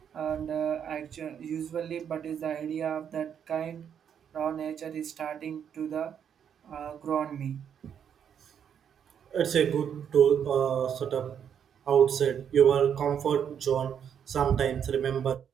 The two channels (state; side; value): quieter; left; 8.3 dB